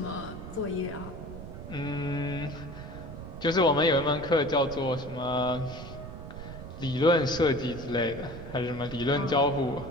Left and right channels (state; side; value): noise; right; rumble, 11 dB below the sound